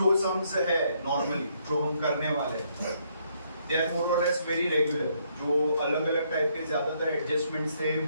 सम्स है नॉर्मली जो हम करने वाले हैं दे आर मोर और लेस वेरी रेगुलर। जो अलग अलग टाइप के ज्यादातर एडजस्टमेंट्स थे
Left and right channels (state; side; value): inverted; both; correlation -0.71